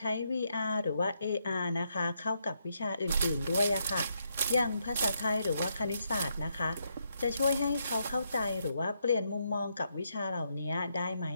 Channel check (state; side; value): inverted; both; correlation -0.79